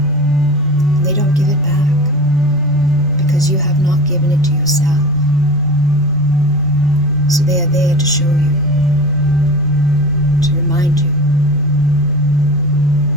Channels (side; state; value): both; normal; correlation 0.33